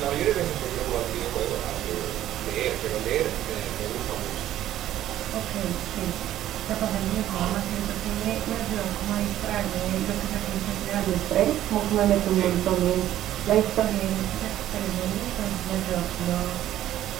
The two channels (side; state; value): left; quieter; 12.7 dB